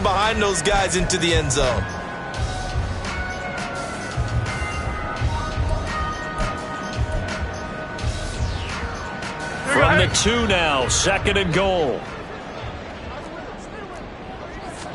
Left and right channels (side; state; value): both; identical; correlation 1.00